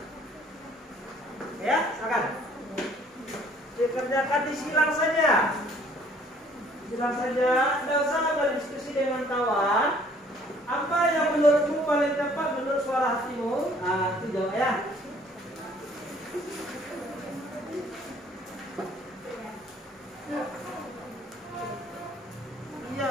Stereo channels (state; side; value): normal; both; correlation 0.58